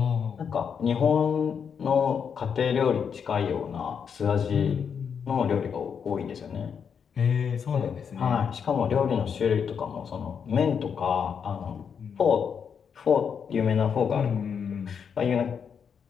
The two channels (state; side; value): quieter; right; 7.0 dB